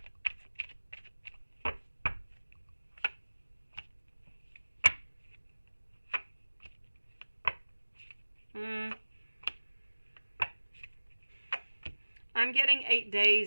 I'm getting 8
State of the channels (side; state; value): both; inverted; correlation -1.00